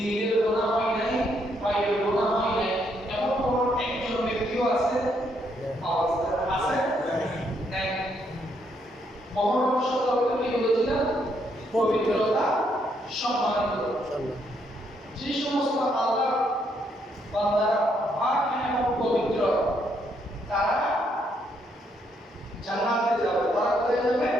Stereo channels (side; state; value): both; normal; correlation 0.74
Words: গোনাহ হয় নাই, পায়ের গোনাহ হয় নাই, এমন কোন একজন ব্যক্তিও আছে? আছে? নাই। মহরম শব্দ কি বলেছিলাম? পবিত্রতা, সম্মানিত। যে সমস্ত আল্লাহ বান্দারা পাক এবং পবিত্র, তারা জান্নাতে যাবে। তারা কোথায় যাবে?